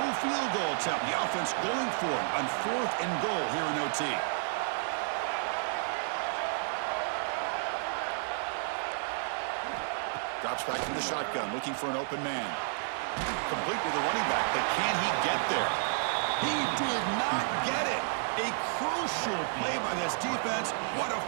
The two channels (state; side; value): silent; left; digital silence